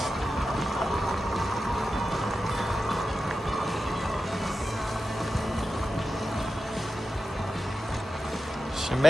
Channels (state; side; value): normal; both; correlation 0.92